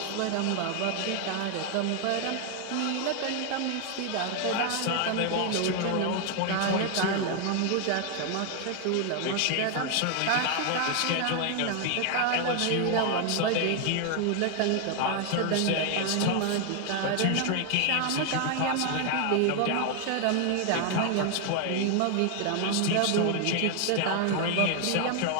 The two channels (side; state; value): both; different; correlation 0.00